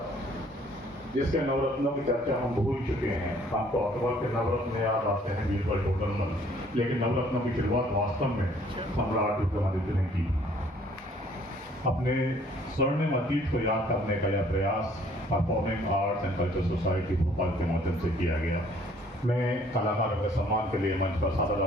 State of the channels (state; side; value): normal; both; correlation 0.60